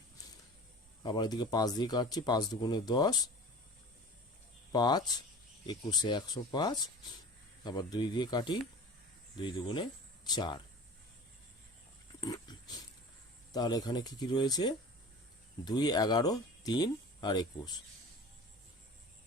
আবার এদিকে 5 দিয়ে কাটছি, 5 2 10, 5 21 105। আবার 2 দিয়ে কাটি, 2 2 4। তাহলে এখানে কি কি রয়েছে? 2 11 3 আর 21,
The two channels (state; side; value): normal; both; correlation 0.39